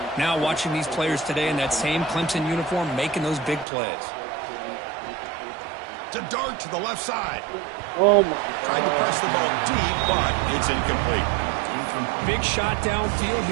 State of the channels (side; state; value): left; drops out; at 3.7 s